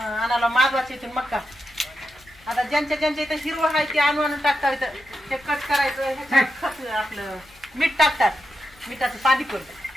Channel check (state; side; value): noise; left; rumble, 27 dB below the sound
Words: मागवायची इथून मक्का. आता ज्यांच्या इथं हिरवं आहे ते आणून टाकतात. इथं ते कट करायचं. ह्याच्यात आपलं मीठ टाकतात. मिठाचं पाणी